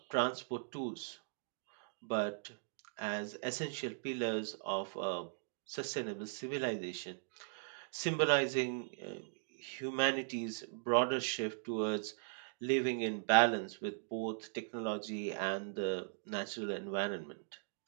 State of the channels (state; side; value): silent; left; digital silence